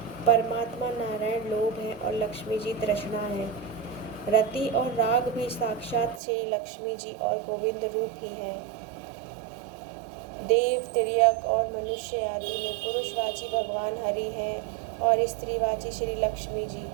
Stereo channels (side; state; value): left; drops out; at 6.2 s